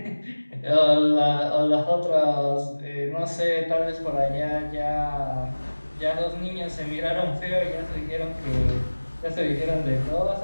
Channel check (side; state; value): both; inverted; correlation -1.00